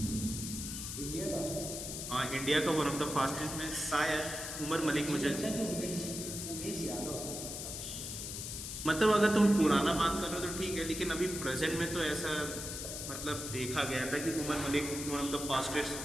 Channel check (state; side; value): noise; left; hiss, 6 dB below the sound